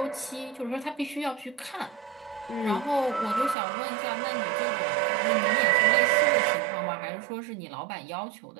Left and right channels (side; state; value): left; drops out; at 3.6 s